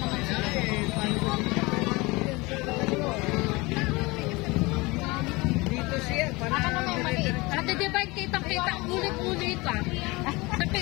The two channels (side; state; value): right; quieter; 23.9 dB